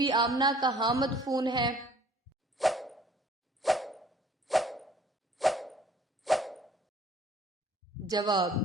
آمنہ کہاں مدفون ہے؟ جواب:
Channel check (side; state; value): both; normal; correlation 0.55